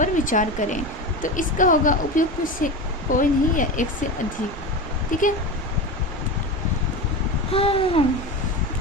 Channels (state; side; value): normal; both; correlation 0.24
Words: विचार करें। तो इसका होगा उपयुक्त से कोई नहीं या एक से अधिक। ठीक है, हाँ,